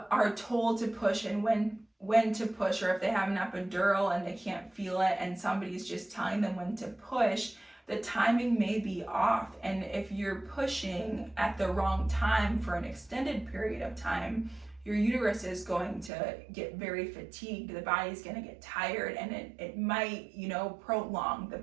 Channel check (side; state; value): left; drops out; at 16.1 s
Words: told to push and when to push, or if they have an epidural and they can't feel it and somebody's just telling them when to push, the timing may be off. And if you're pushing at the wrong time for an extended period of time, your uterus is going to get very fatigued, the body's going to get tired, and it might, prolong the